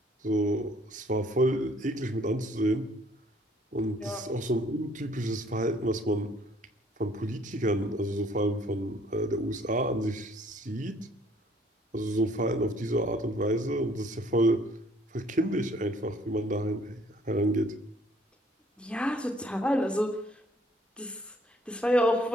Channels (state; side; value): normal; both; correlation 0.60